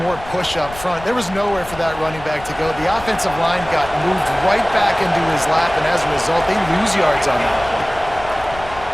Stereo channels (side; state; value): left; noise; rumble, 16 dB below the sound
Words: more push up front. There was nowhere for that running back to go. The offensive line got moved right back into his lap, and as a result, they lose yards on that